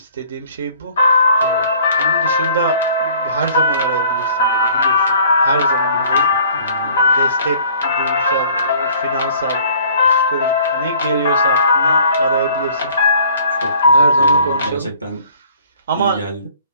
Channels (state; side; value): inverted; both; correlation -0.54